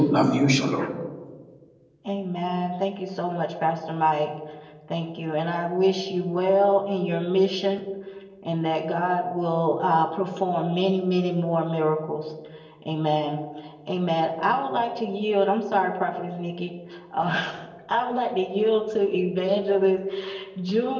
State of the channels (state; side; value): identical; both; correlation 1.00